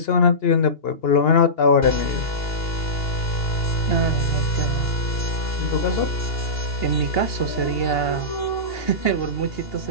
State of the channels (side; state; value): right; late; 2.8 ms